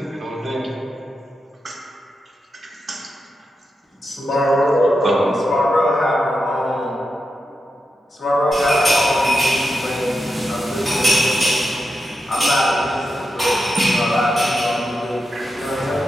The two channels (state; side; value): normal; both; correlation 0.87